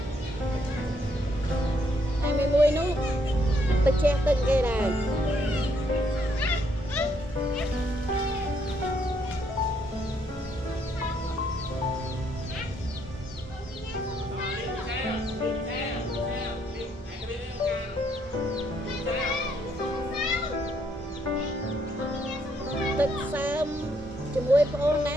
Hai mươi mùi nú, tự che từng cái này. Tức sớm cho mùi phong ná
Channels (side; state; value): both; normal; correlation 0.72